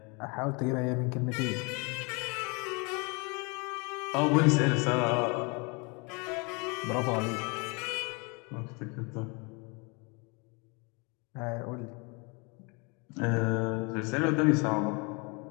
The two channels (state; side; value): quieter; right; 31.0 dB